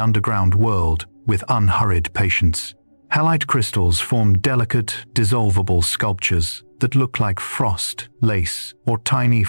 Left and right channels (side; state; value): both; inverted; correlation -1.00